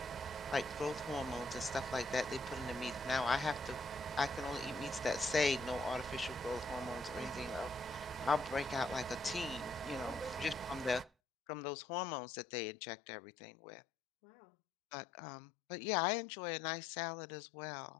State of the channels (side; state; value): right; drops out; at 11.1 s